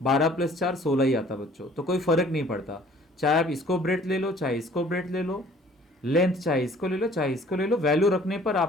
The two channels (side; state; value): both; normal; correlation 0.54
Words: 12 प्लस 4 16 ही आता बच्चों। तो कोई फर्क नहीं पड़ता, चाहे आप इसको ब्रेड्थ ले लो, चाहे इसको ब्रेड्थ ले लो, लेंथ चाहे इसको ले लो, चाहे इसको ले लो, वैल्यू रखने पर